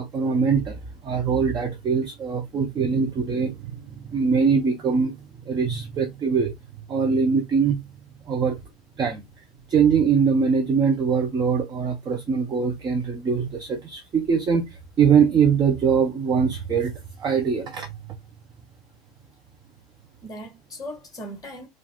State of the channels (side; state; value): left; quieter; 5.7 dB